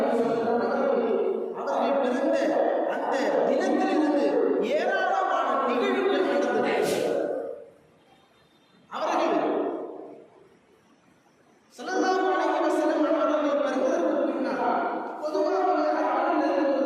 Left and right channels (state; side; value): identical; both; correlation 1.00